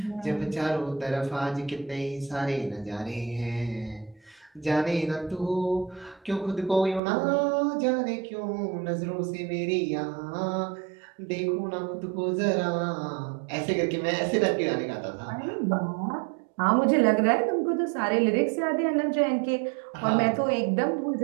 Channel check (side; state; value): left; drops out; at 7.0 s